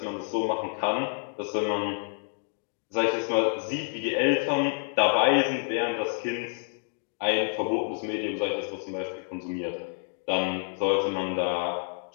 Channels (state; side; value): silent; right; 58 dB below the other